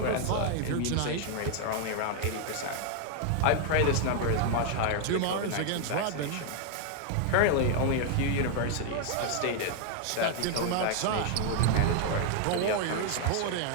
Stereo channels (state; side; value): different; both; correlation 0.00